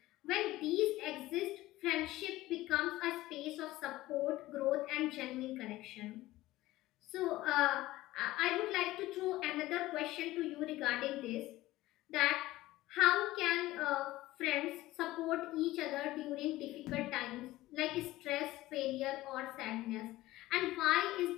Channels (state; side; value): quieter; right; 17.1 dB